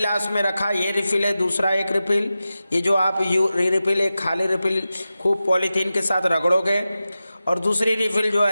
में रखा ये रिफिल है, दूसरा एक रिफिल, ये जो आप रिफिल एक खाली रिफिल खूब पॉलीथीन के साथ रगड़ोगे और दूसरी रिफिल जो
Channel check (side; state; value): both; inverted; correlation -0.93